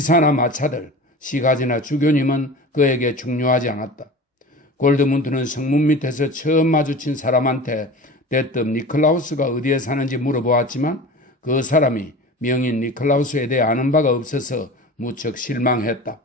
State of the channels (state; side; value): normal; both; correlation 0.35